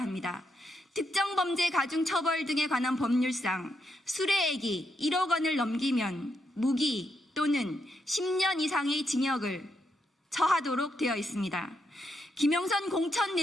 합니다. 특정 범죄 가중 처벌 등에 관한 법률상 수뢰액이 1억 원을 넘기면 무기 또는 10년 이상의 징역을 처하도록 되어 있습니다. 김영선 공천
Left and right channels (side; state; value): both; normal; correlation 0.81